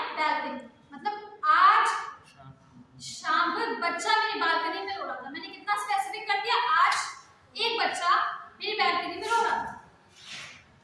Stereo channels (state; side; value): identical; both; correlation 1.00